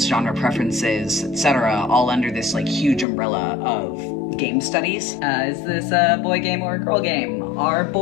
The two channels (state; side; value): drops out; right; at 3.1 s